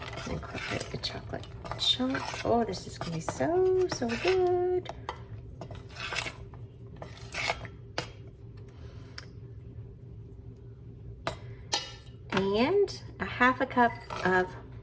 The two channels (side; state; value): both; identical; correlation 1.00